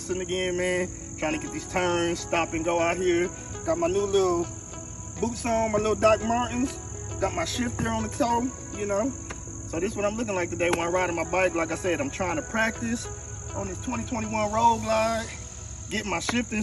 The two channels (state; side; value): identical; both; correlation 1.00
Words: again, man. Trying to get these turns, stop and go out here. Got my new little boots on, my little Doc Martens. Got my shifter on the toe, you know. So this is what I'm looking like today when I'm riding my bike. Like I said, I'm trying to practice on this 2021 Road Glide, get my shifting